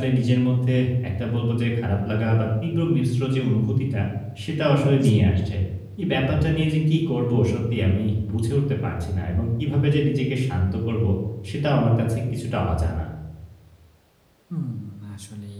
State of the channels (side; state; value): both; identical; correlation 1.00